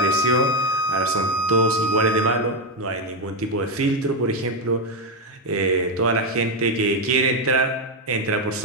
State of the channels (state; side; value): normal; both; correlation 0.06